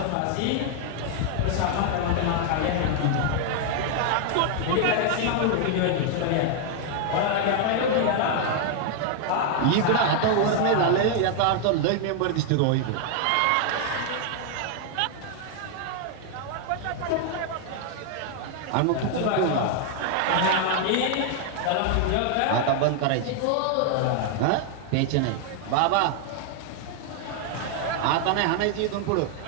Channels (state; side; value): different; both; correlation 0.00